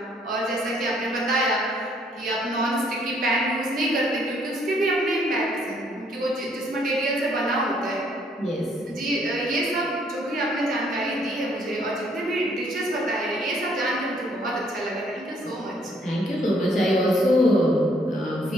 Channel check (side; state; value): both; normal; correlation 0.66